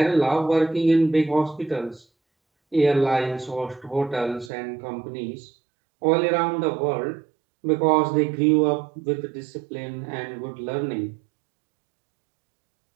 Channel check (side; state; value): left; drops out; at 4.5 s